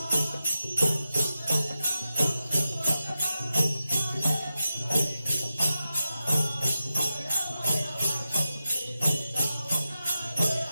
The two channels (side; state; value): both; inverted; correlation -0.90